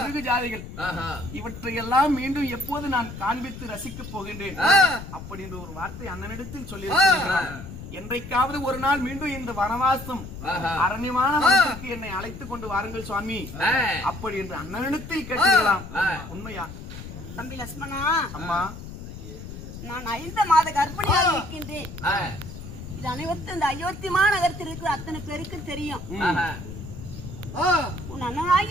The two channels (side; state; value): left; noise; rumble, 11 dB below the sound